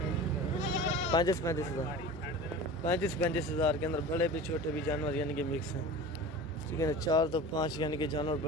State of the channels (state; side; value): normal; both; correlation 0.35